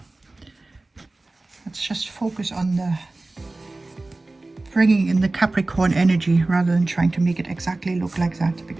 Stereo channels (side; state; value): left; quieter; 3.0 dB